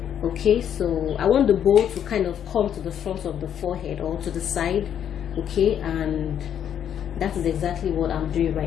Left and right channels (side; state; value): right; quieter; 9.3 dB